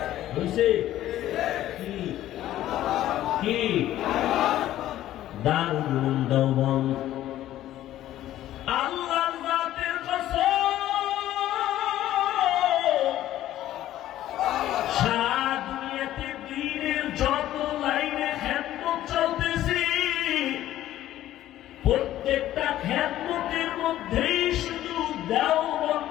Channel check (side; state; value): right; quieter; 13.4 dB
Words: বুঝছে কি কি দারুল উলুম দেওবন্দ। আল্লাহর জাতের কসম, সারা দুনিয়াতে দ্বীনের যত লাইনে খেদমত চলতেছে, প্রত্যেকটা খেদমতের মধ্যেই শুধু